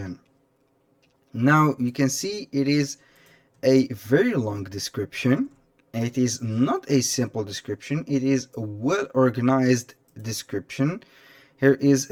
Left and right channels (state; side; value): identical; both; correlation 1.00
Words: Now you can see it is a very long description. It is not a simple description, it is a well organized description. Here is